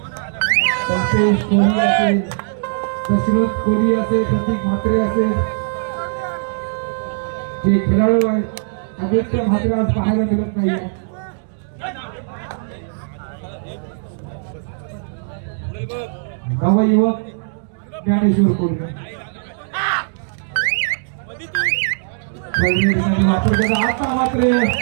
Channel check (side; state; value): left; silent; digital silence